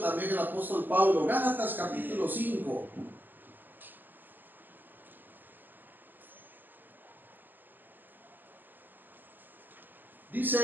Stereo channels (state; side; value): late; left; 0.088 ms